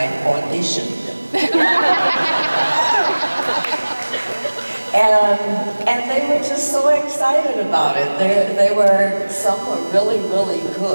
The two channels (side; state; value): both; inverted; correlation -1.00